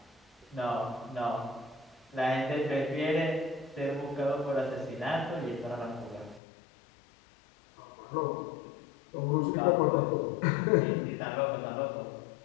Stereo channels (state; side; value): drops out; right; at 6.4 s